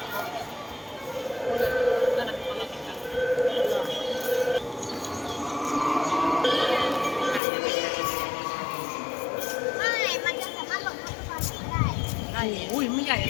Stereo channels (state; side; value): drops out; right; at 7.4 s